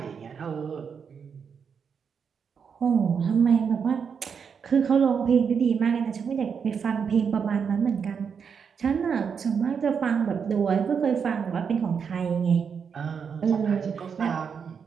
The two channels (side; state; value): left; quieter; 6.5 dB